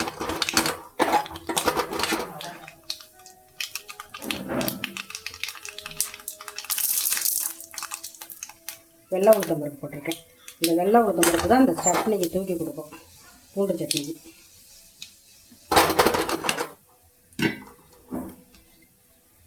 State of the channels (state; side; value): identical; both; correlation 1.00